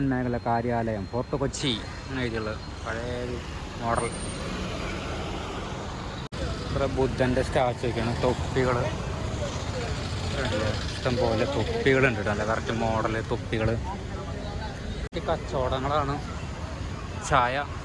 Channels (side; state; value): both; identical; correlation 1.00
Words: മേഖല കാര്യാലയം, ഫോർട്ട് കൊച്ചി അങ്ങനെ എഴുതിയുള്ളത്. പഴയ മോഡൽ. ഇവിടെ ബുദ്ധൻ്റെ സ്റ്റാച്ചു ഒക്കെയാണ്. തൊപ്പികൾ ഇഷ്ടം പോലെ തൊപ്പികളുണ്ട് കേട്ടോ. നല്ല കറക്റ്റ് മോഡൽ തൊപ്പികൾ. കച്ചവടങ്ങളാണ്. ചായ